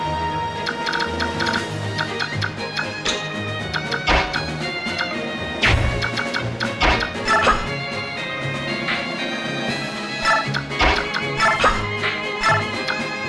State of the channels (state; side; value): identical; both; correlation 1.00